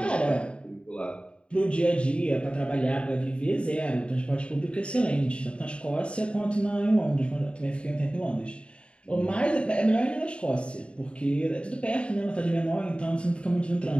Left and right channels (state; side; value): late; right; 0.057 ms